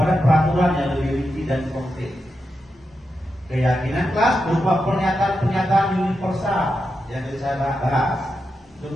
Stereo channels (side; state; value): both; normal; correlation 0.87